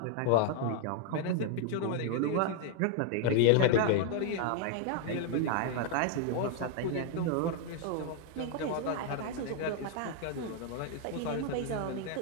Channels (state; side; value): different; both; correlation 0.00